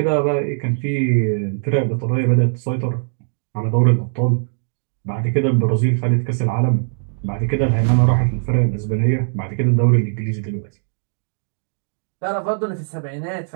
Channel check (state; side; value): silent; left; digital silence